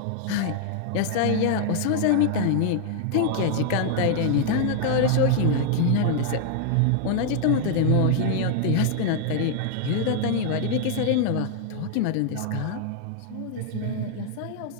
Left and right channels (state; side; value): different; both; correlation 0.00